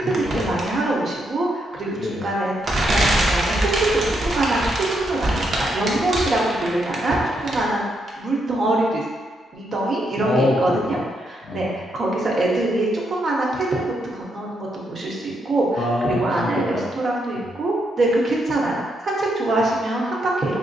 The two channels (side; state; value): both; normal; correlation 0.79